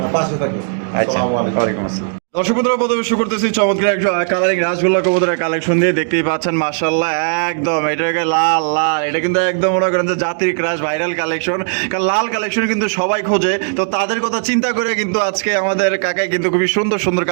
পাশে থাকবেন আসসালামু আলাইকুম ওয়া আলাইকুম আসসালাম দর্শক বন্ধুরা প্রথমে শুরু করতেছি চমৎকার একটা কালারিং রাসগোল্লা কবুতরের কালেকশন দিয়ে দেখতেই পাচ্ছেন মাশাআল্লাহ একদম এটাকে লাল লাল এটা কিন্তু একদম মনে করেন যে জাতির ক্রাশ ভাইরাল কালেকশন কারণ লাল কালেকশন কিন্তু সবাই খোঁজে তো তাদের কথা চিন্তা করে কিন্তু আজকে আমাদের কাকাই কিন্তু খুবই সুন্দর সুন্দর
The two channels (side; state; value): left; silent; digital silence